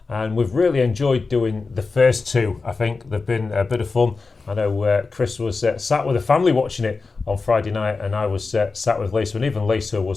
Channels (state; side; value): quieter; right; 4.2 dB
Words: and we've really enjoyed doing the first two. I think they've been a bit of fun. I know Chris was sat with the family watching it on Friday night and I was sat with Lisa, and even Lisa